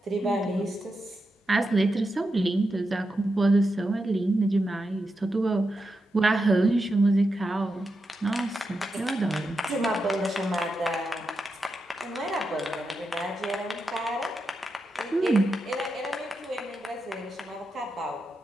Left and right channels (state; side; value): normal; both; correlation 0.87